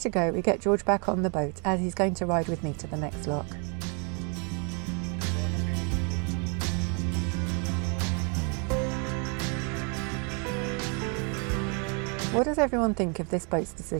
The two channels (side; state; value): left; quieter; 36.1 dB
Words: go, we get George back on the boat as he's going to ride with me to the next lock. What does everyone think of this boat's